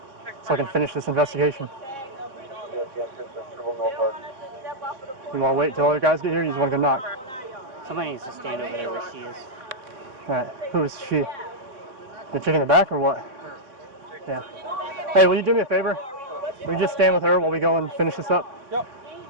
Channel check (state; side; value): late; left; 3.9 ms